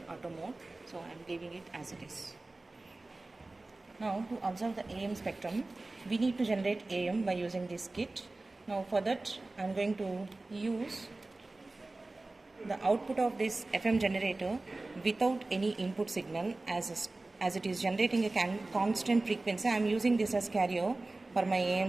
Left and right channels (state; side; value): quieter; left; 3.1 dB